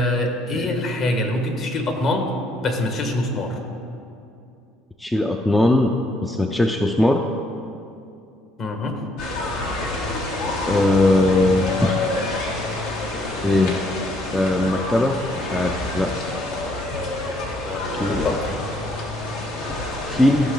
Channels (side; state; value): both; normal; correlation 0.70